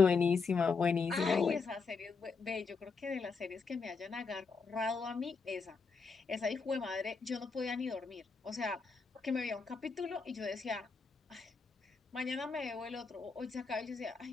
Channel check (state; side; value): quieter; right; 4.8 dB